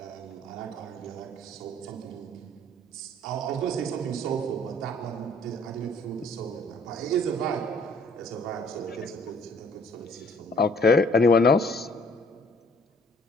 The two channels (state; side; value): normal; both; correlation 0.58